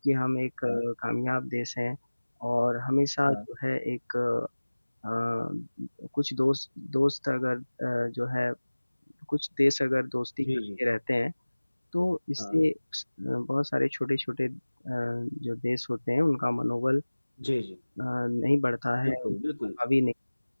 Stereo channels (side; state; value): both; inverted; correlation -1.00